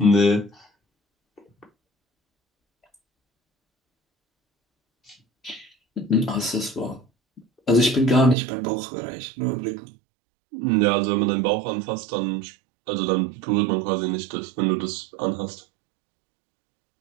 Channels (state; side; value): drops out; left; at 8.3 s